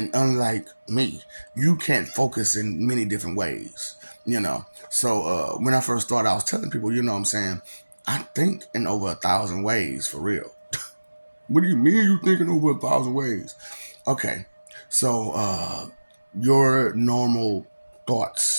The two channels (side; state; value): both; inverted; correlation -1.00